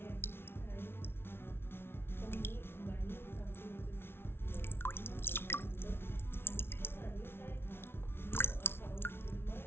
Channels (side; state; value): right; late; 0.12 ms